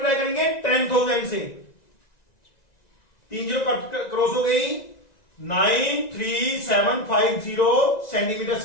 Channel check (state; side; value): late; right; 1.9 ms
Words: करेंगे, 10,000 से। 3 जीरो क्रॉस हो गई, 93750 सेंटीमीटर